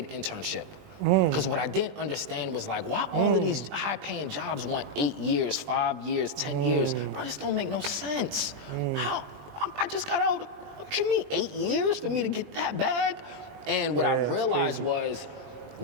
internship. Because what I didn't understand was like, why all of these high-paying jobs want 8 years, 5 years, 10 years? Bro, this don't make no sense. How? I just got out, what you mean, 8 years for me to get that bag? And what I realized was,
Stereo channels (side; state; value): left; late; 20 ms